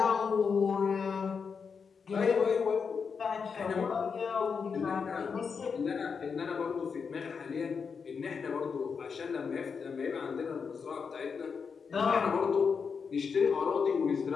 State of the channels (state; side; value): quieter; right; 5.8 dB